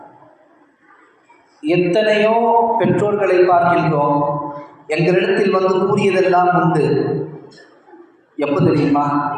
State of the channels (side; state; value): both; identical; correlation 1.00